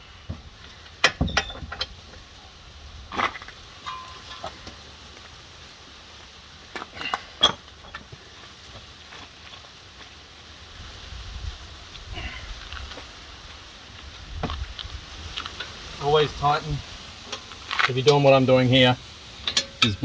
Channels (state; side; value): identical; both; correlation 1.00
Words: Always tighten. If you're doing what I'm doing here, it's